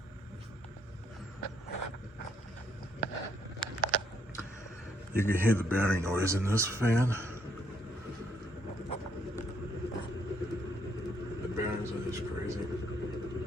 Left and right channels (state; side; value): normal; both; correlation 0.71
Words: You can hear the bearing noise in this fan. The bearings are just crazy.